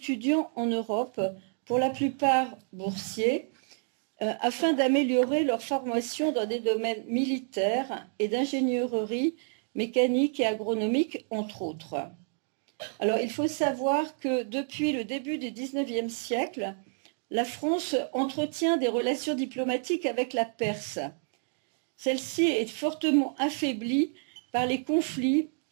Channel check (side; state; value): left; silent; 58 dB below the other